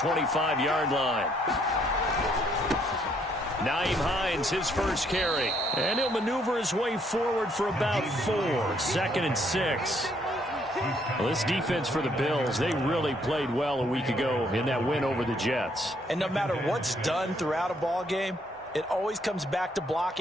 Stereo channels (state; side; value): normal; both; correlation 0.69